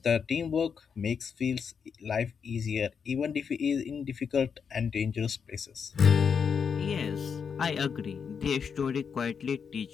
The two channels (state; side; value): quieter; right; 6.5 dB